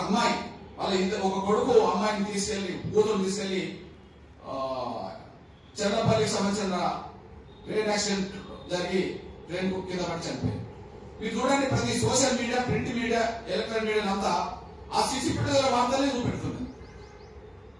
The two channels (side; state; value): both; identical; correlation 1.00